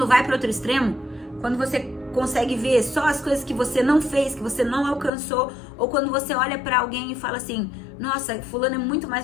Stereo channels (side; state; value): right; drops out; at 5.1 s